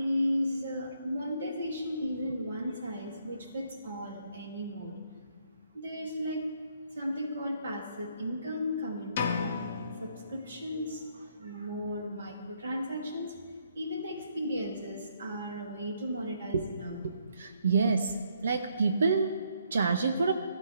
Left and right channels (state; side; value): inverted; both; correlation -0.72